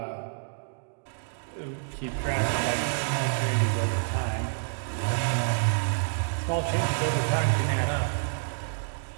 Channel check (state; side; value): silent; left; digital silence